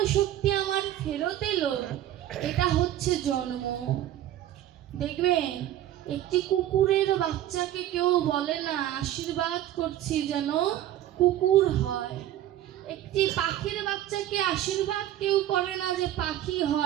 শক্তি আমার ফেরত এলো, এটা হচ্ছে জন্ম। দেখবেন একটি কুকুরের বাচ্চাকে কেউ বলে না আশীর্বাদ করছি যেন কুকুর হয়। একটি পাখির বাচ্চাকে আশীর্বাদ কেউ করে না যে পাখি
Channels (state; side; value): quieter; left; 12.7 dB